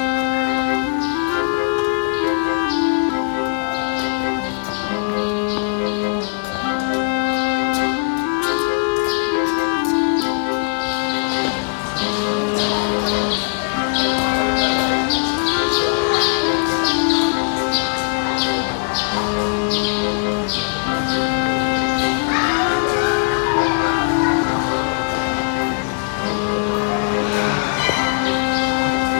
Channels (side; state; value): right; silent; 66 dB below the other